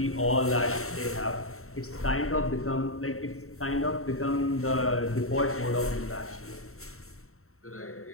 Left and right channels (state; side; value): late; right; 0.63 ms